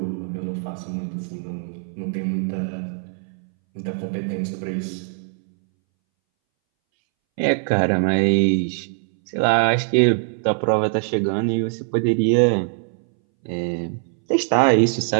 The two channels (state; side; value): silent; left; 62 dB below the other